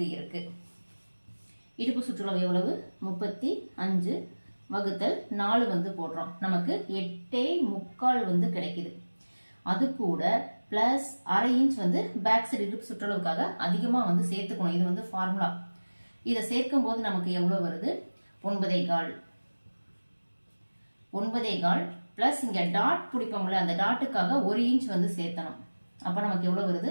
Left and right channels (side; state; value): both; inverted; correlation -1.00